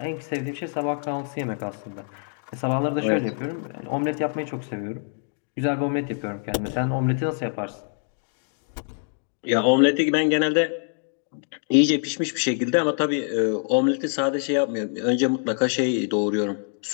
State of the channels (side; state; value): right; silent; digital silence